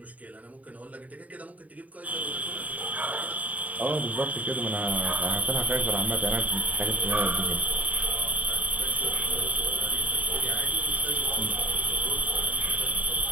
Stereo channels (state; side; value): late; left; 0.072 ms